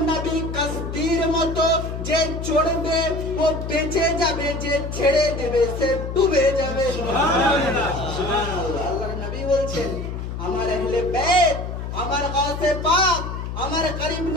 নবী কাস্তির মতো, যে চড়বে ও বেঁচে যাবে, যে ছেড়ে দেবে সে ডুবে যাবে। সুবহানাল্লাহ, সুবহানাল্লাহ। আল্লাহর নবী বলছেন, আমার আহলে বাইত, আমার গাউসে পাক, আমার করিম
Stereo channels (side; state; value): left; noise; hum, 6 dB below the sound